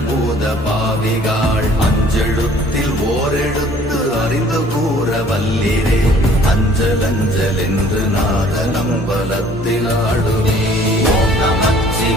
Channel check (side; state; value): both; normal; correlation 0.55